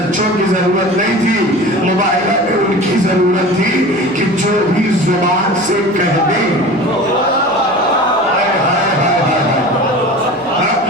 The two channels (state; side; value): noise; right; hum, 27 dB below the sound